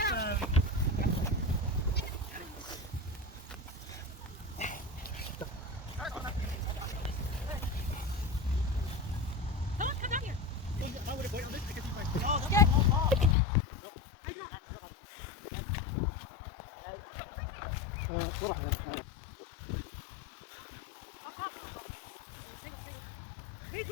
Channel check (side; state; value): right; drops out; at 13.4 s